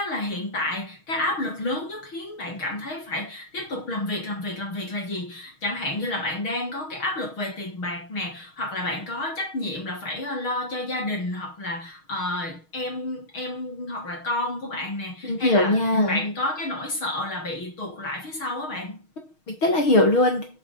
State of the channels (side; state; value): right; late; 6.4 ms